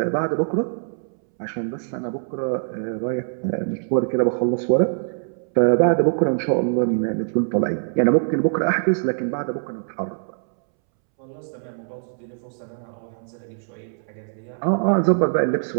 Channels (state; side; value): silent; left; 63 dB below the other